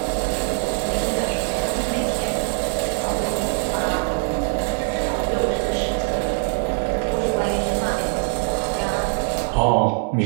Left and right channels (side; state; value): left; silent; 60 dB below the other